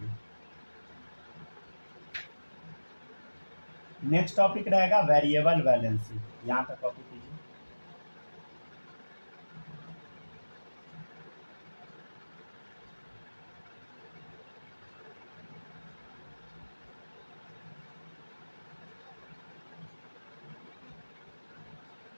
नेक्स्ट टॉपिक रहेगा वेरिएबल वैलेंसी, यहाँ तक कॉपी कीजिए।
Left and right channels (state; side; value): inverted; both; correlation -1.00